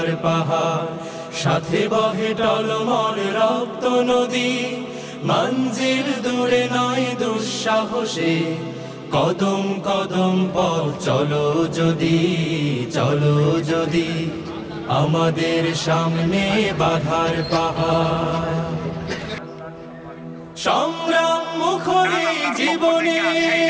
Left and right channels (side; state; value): both; identical; correlation 1.00